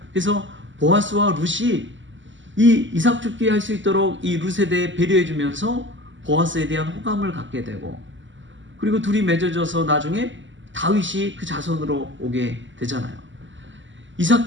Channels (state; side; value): late; left; 0.55 ms